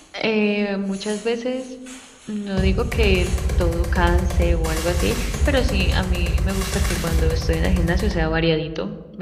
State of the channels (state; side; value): identical; both; correlation 1.00